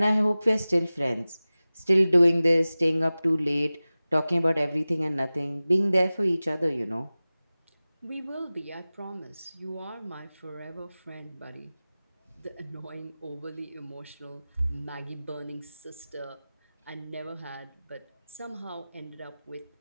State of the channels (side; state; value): both; inverted; correlation -0.97